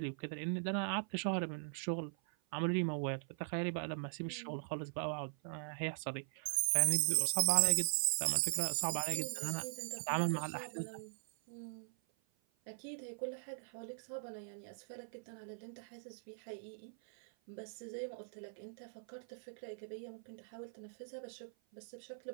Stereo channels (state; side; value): silent; left; 51 dB below the other